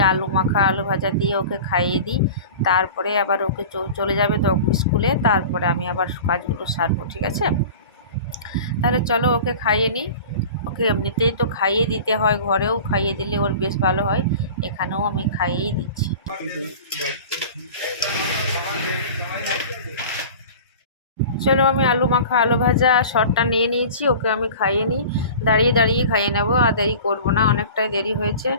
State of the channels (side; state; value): both; inverted; correlation -0.38